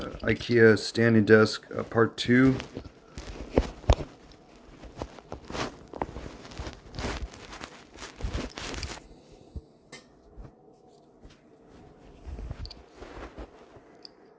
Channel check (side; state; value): both; identical; correlation 1.00